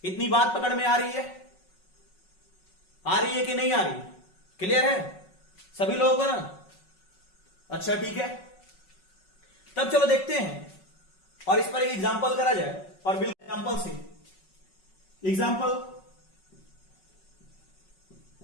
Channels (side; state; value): right; late; 5.4 ms